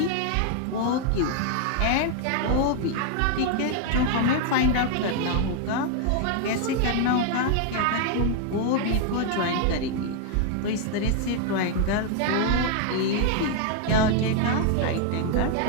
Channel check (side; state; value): both; different; correlation 0.00